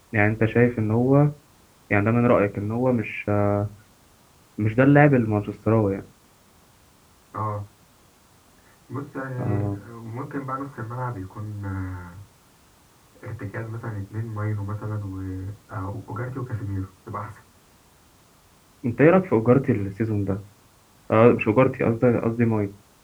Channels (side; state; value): both; identical; correlation 1.00